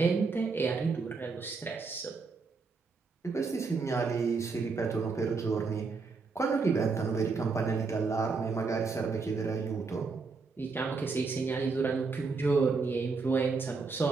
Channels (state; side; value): quieter; left; 4.5 dB